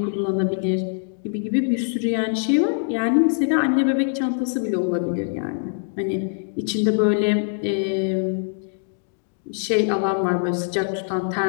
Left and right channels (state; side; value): silent; right; digital silence